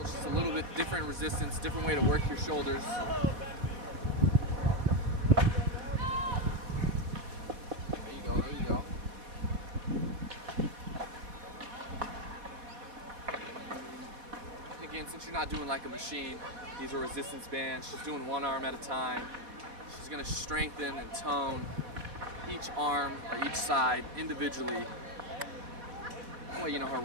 it's just a little bit different resistance, different way to work your shoulders. There you go, there you go. Again, since you're not doing like a machine, these are resistance bands. She's doing 1 arm at a time. She's gonna strengthen and tone each arm or each side individually. That way, you know, her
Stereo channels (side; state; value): left; late; 4.1 ms